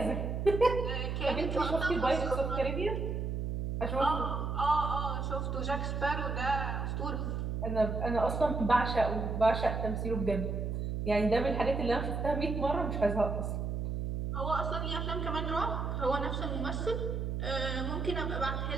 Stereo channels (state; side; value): noise; right; hum, 2 dB below the sound